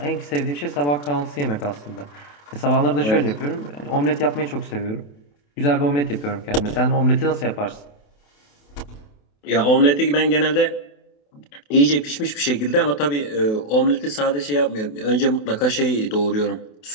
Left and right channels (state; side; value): late; right; 28 ms